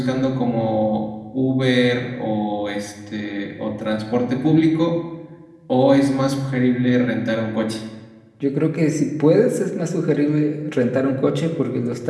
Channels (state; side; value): identical; both; correlation 1.00